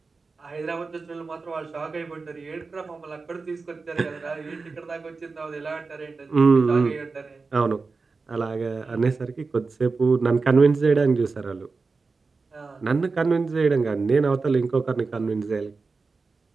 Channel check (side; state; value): left; quieter; 4.2 dB